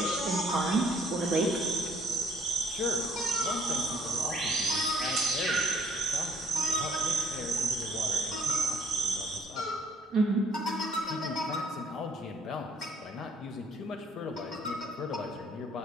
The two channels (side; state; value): both; normal; correlation 0.62